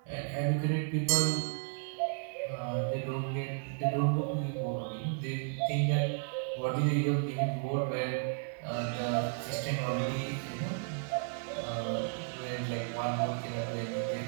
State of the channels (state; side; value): silent; left; 55 dB below the other